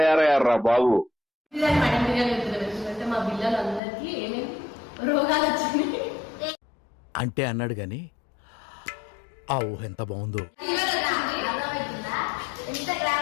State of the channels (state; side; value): drops out; right; at 3.8 s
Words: బాబు? పిల్లలు మేడం బిర్యానీ ఎందుకంటే మా పిల్లలందరికీ ఏమేమి రోగాలు వచ్చినాయి అంటే అన్నాడు గాని ఆ ఊహ ఎంత బాగుందో. అర్థమవుతుందా? ఎంత